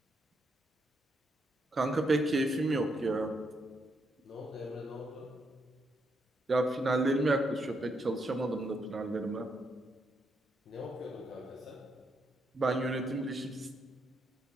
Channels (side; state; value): both; normal; correlation 0.78